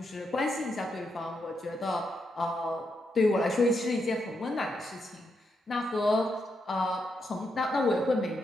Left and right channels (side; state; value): both; normal; correlation 0.82